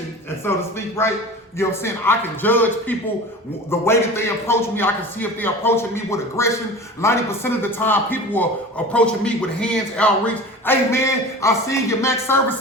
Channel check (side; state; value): both; normal; correlation 0.36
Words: and so to speak, right? You know what I'm saying? I can judge people the way that they approach me. I can see if they're approaching me with aggression. 90% of the time, people are approaching me with hands outreach. Hey man, I see your max service